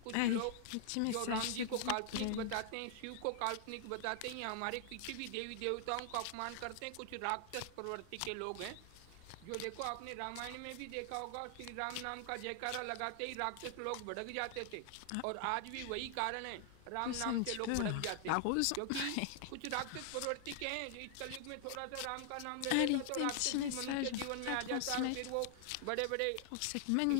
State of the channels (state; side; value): different; both; correlation 0.00